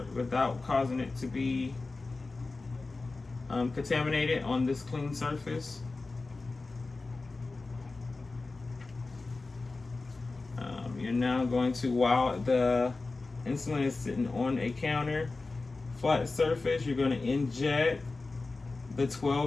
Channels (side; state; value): right; quieter; 3.6 dB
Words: causing it to be contaminated on this clean surface. You're now going to, while the insulin is sitting on a counter, flat surface, you're going to inject the